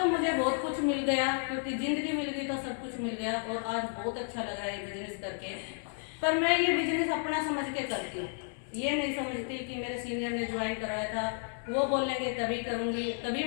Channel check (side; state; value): right; silent; 56 dB below the other